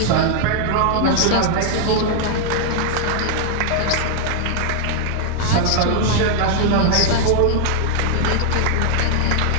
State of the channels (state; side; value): different; both; correlation 0.00